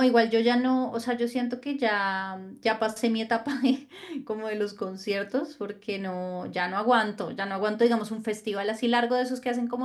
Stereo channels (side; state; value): both; identical; correlation 1.00